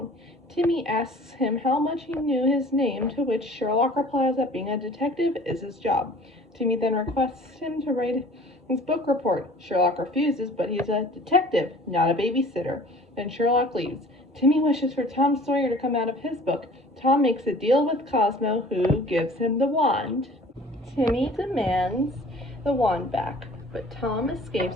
Timmy asks him how much he knew his name, to which Sherlock replies that being a detective is his job. Timmy then requests him to write his book report. Sherlock refuses, but he's a detective, not a babysitter. Then Sherlock leaves. Timmy wishes for Tom Sawyer to come out of his book. Tom makes a deal with Cosmo, who gives him the wand. Timmy demands the wand back, but Tom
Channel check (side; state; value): both; normal; correlation 0.48